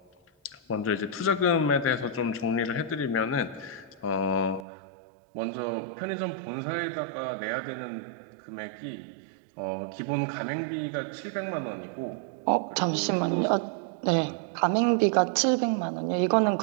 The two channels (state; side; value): drops out; left; at 4.7 s